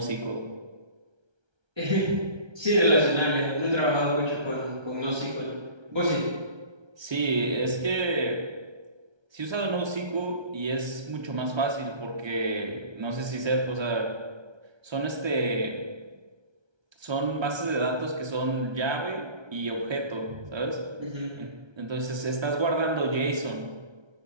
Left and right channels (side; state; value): left; late; 1.3 ms